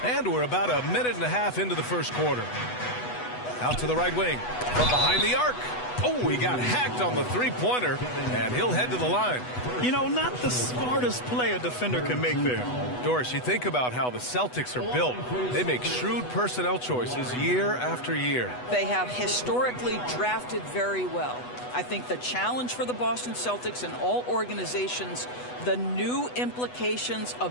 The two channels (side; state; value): right; late; 8.1 ms